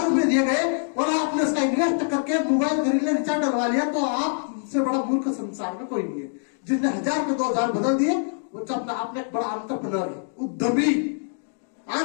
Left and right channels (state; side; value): silent; right; digital silence